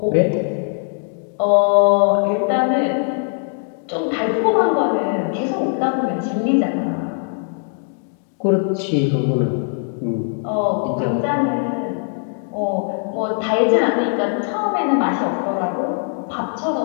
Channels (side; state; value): right; silent; 59 dB below the other